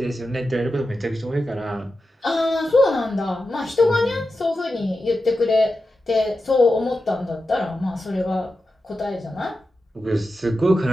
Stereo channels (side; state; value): both; normal; correlation 0.91